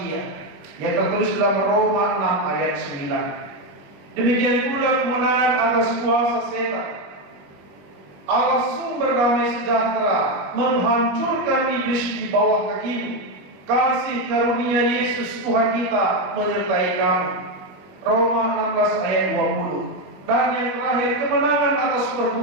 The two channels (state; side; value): late; left; 21 ms